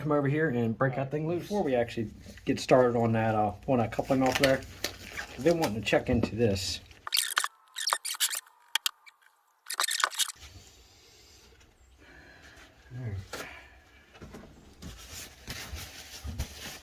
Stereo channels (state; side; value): identical; both; correlation 1.00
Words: come over here and break that thing loose. Before we actually get started on that, pulling that coupling off there, I've been wanting to check into this.